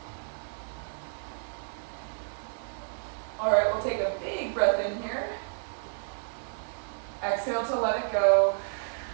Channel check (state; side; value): silent; left; 57 dB below the other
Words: All right, we'll take a big breath in here. Exhale to let it go.